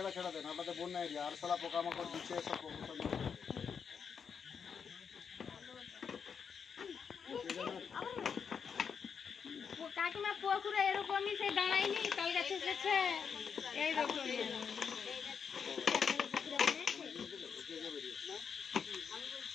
দেন, আপনাদের বন্যা এরিয়া আর সালা পোকামাকড় দিচ্ছে সব প্রবলেম। কাকিমা পুকুরে এরকমই সেই দাঁড়ায়নি, তাল গাছে এসেছে এইরকমই।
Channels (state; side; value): quieter; right; 6.6 dB